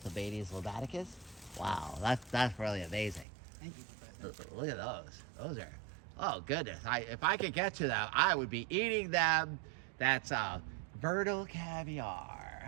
lobaticus. Wow, that's really amazing. Thank you, Professor. Look at those. Those are, oh goodness. If I could get to them, I would be eating them. That's Vernal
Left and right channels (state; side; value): drops out; left; at 3.2 s